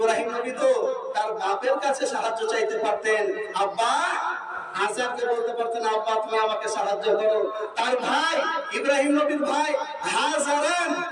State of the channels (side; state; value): both; identical; correlation 1.00